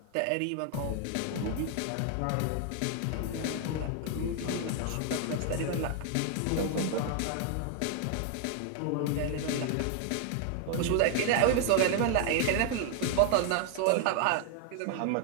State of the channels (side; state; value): both; different; correlation 0.00